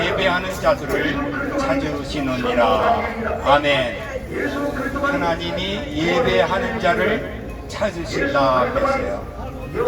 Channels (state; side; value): identical; both; correlation 1.00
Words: 예배하는 자들을 찾으시느니라. 아멘. 하나님이 예배하는 자를 찾으신다 했어요.